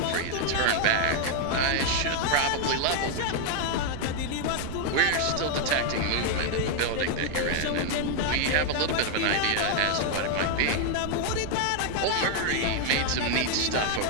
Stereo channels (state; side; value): different; both; correlation 0.00